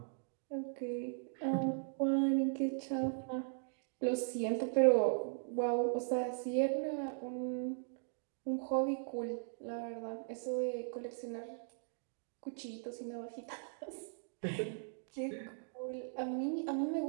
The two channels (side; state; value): left; silent; digital silence